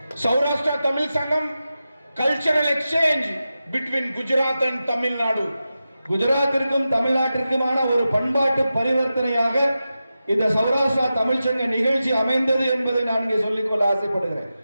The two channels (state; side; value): inverted; both; correlation -0.92